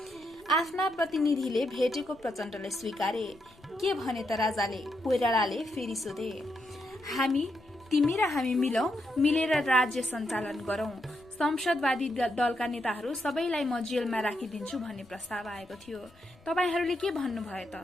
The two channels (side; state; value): left; noise; rumble, 27 dB below the sound